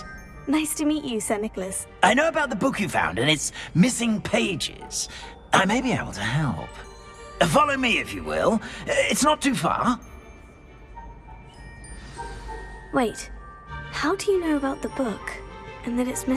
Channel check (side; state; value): both; identical; correlation 1.00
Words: Nice to meet you, Sir Nicholas. I know about the book you found and its missing pages. I may be able to help. Follow me, if you will. It's not too far. Wait, how do you know about the book? And that it's